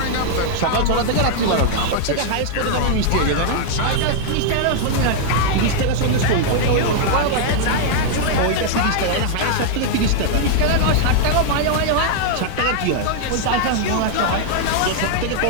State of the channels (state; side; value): different; both; correlation -0.01